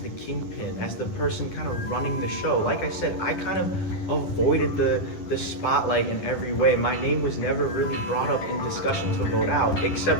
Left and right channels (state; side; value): late; right; 10 ms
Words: kingpin, as the person kind of running the show. Like I said, I kind of avoided the spotlight in every way. My name was never really brought up in discussion to vote out,